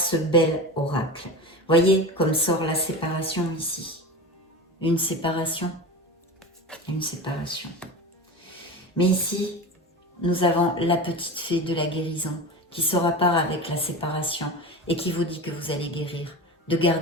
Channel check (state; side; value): normal; both; correlation 0.28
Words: bel oracle. Voyez comme sort la séparation ici. Une séparation. Une séparation. Mais ici, nous avons la petite fée de la guérison qui sort à part avec la séparation et qui vous dit que vous allez guérir. De